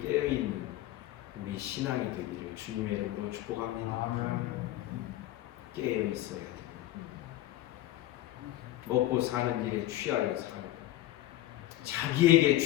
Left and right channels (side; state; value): right; quieter; 14.9 dB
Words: 깨어있는 우리 신앙이 되기를 주님의 이름으로 축복합니다. 깨어있어야 됩니다. 먹고 사는 일에 취하여 살고 자기에게